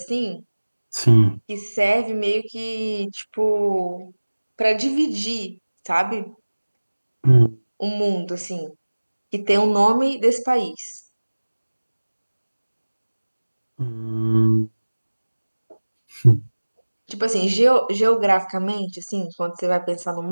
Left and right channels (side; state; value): both; inverted; correlation -1.00